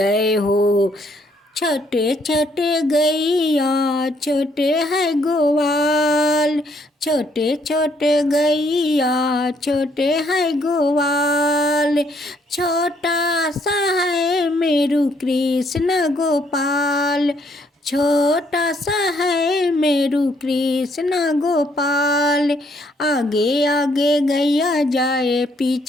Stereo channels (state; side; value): normal; both; correlation 0.69